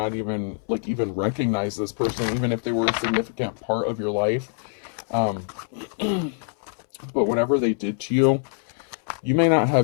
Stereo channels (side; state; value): right; silent; 62 dB below the other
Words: even, like, even recognize this person, even if they were a significant part of your life. But whatever they did to you, you may not